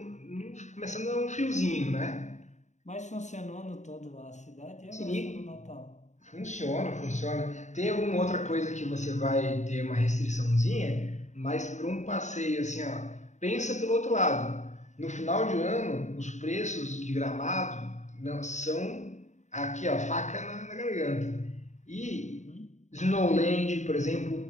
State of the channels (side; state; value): right; late; 0.34 ms